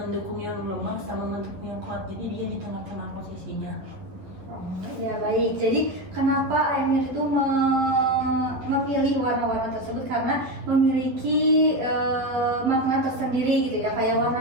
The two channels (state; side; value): late; left; 11 ms